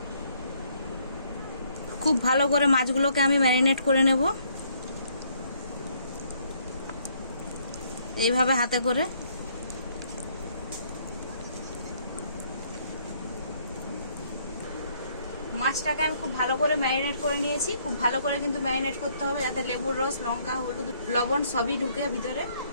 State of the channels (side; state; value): both; inverted; correlation -0.66